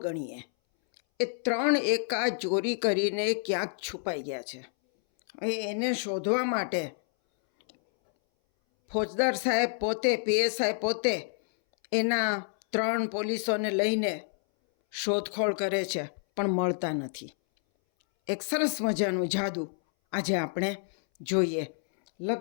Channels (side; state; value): right; silent; 59 dB below the other